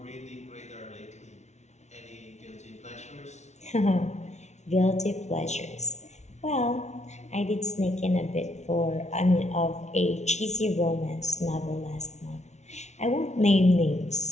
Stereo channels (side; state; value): right; late; 0.32 ms